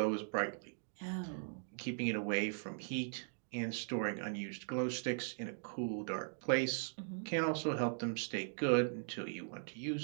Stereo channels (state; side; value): silent; left; digital silence